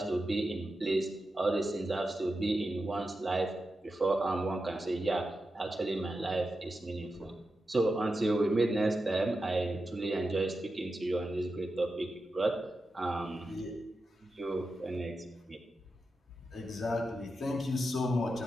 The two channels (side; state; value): both; normal; correlation 0.90